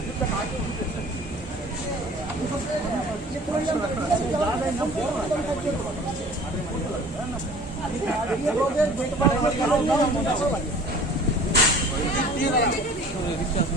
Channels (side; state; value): both; normal; correlation 0.47